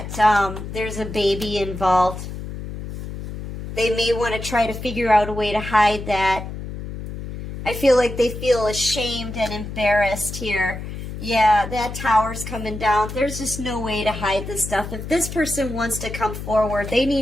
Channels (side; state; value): left; noise; hum, 8 dB below the sound